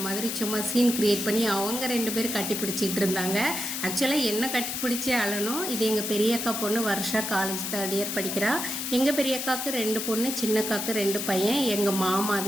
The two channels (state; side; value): noise; left; hiss, 3 dB below the sound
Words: மாதிரி சும்மா சீன் கிரியேட் பண்ணி அவங்க 2 பேரும் கட்டி பிடிச்சிட்டு இருந்தாங்க. ஆக்சுவலாக என்ன கட்டி பிடிச்சி அழணும். இது எங்கள் பெரிய அக்கா பொண்ணு வருஷா காலேஜ் 3rd இயர் படிக்கிறா. எங்கள் பெரிய அக்காவுக்கு 2 பொண்ணு, சின்ன அக்காவுக்கு 2 பையன். எங்கள் மாமா